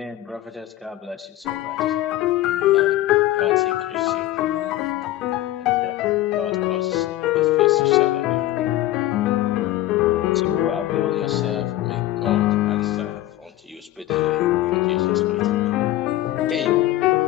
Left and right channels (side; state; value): right; quieter; 15.0 dB